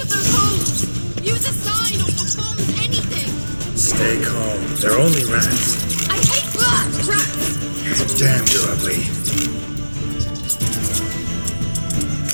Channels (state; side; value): inverted; both; correlation -1.00